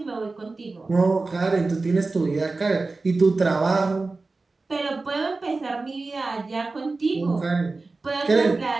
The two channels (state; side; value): quieter; left; 3.6 dB